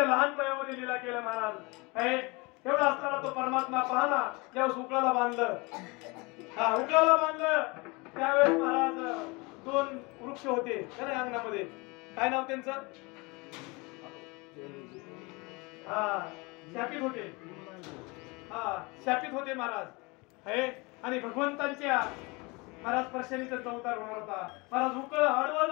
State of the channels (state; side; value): quieter; right; 26.6 dB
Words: लहान वयामध्ये लीला केल्या महाराज एवढा असताना तो परमात्मा पाहला ज्यावेळेस उकळाला बांधलं त्यावेळेस महाराज दोन वृक्ष होते अंगणामध्ये काय नाव त्यांचं शापित होते महाराज आणि भगवंतांच्या महाराज स्पर्शाने त्यांचा अवतार होणार होता महाराज उकळ आडवं